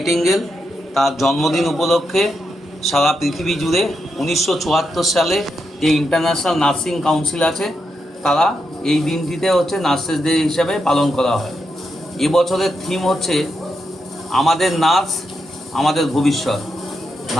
তার জন্মদিন উপলক্ষে সারা পৃথিবী জুড়ে 1974 সালে যে ইন্টারন্যাশনাল নার্সিং কাউন্সিল আছে তারা এই দিনটিতে নার্সেস ডে হিসাবে পালন করা হয়। এবছরের থিম হচ্ছে আমাদের নার্স আমাদের ভবিষ্যৎ।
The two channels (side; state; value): both; normal; correlation 0.84